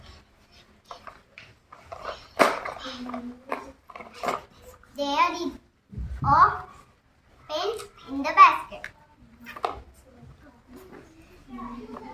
There is a pen in the basket.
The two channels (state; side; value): identical; both; correlation 1.00